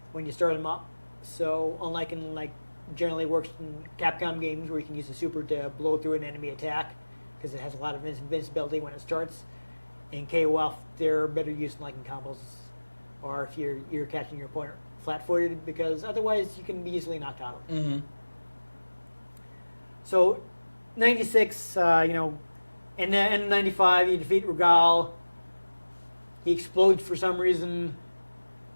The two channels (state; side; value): inverted; both; correlation -1.00